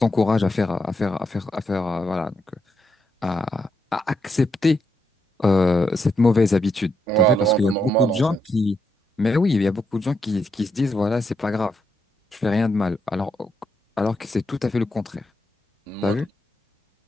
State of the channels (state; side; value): normal; both; correlation 0.80